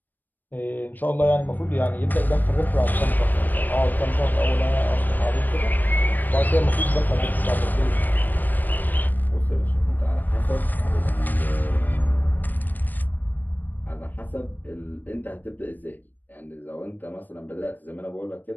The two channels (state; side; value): late; right; 0.088 ms